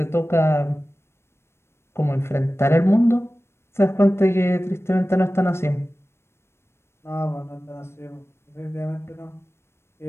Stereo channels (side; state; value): right; late; 0.12 ms